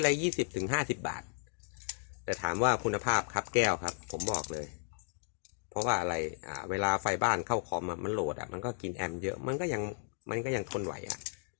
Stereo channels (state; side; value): silent; right; digital silence